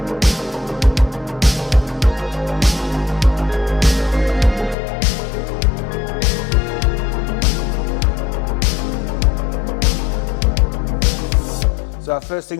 So our first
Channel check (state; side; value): drops out; right; at 4.8 s